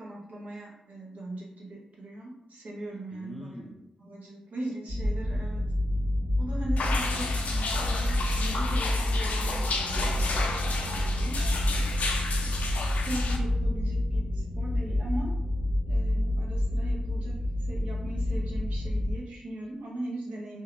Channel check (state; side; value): normal; both; correlation 0.87